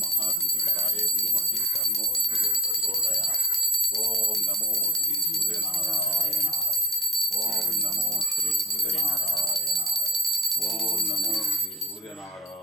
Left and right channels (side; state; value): both; normal; correlation 0.51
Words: మహాద్యుతికరాయ ధీమహి తన్నో సూర్యం ప్రచోదయాత్. ఓం నమో శ్రీ సూర్యనారాయణాయ. ఓం నమో శ్రీ సూర్యనారాయణాయ. ఓం నమో శ్రీ